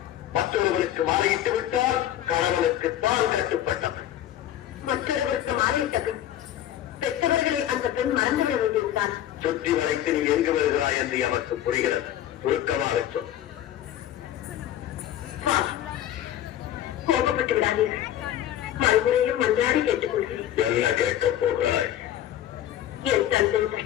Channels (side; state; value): right; quieter; 11.9 dB